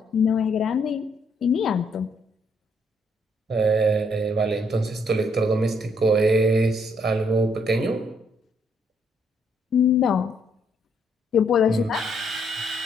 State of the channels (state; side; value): normal; both; correlation 0.71